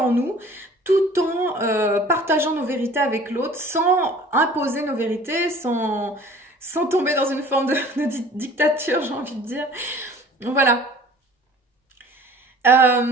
nous tout en partageant nos vérités avec l'autre, sans imposer nos vérités, sans tomber dans une forme de dictature, j'ai envie de dire. Voilà.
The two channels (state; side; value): normal; both; correlation 0.48